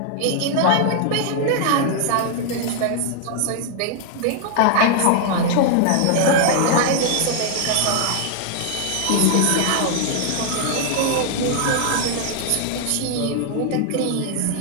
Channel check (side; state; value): both; different; correlation 0.00